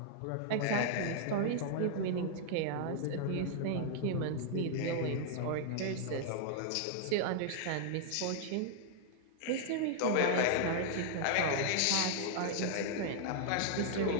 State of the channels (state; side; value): different; both; correlation -0.01